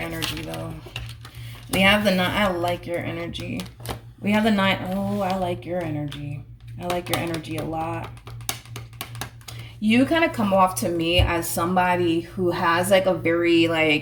energy though. We have the 9. I like your energy. We have the 9. Oh, I like your energy. I like your energy a lot. You kind of come off to me as somebody who has like a very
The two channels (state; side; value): identical; both; correlation 1.00